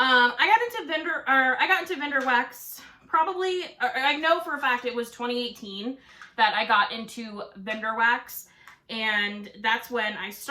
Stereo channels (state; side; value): identical; both; correlation 1.00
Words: got into vendor wax probably, I know for a fact it was 2018 that I got into vendor wax. And that's when I